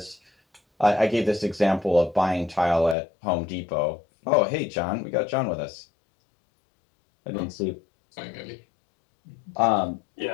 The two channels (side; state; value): right; drops out; at 3.0 s